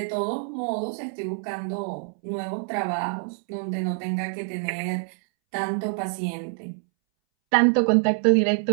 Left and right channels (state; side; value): silent; left; 61 dB below the other